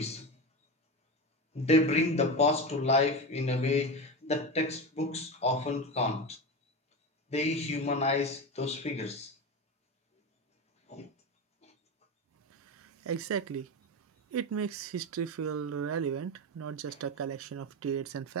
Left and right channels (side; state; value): both; normal; correlation 0.21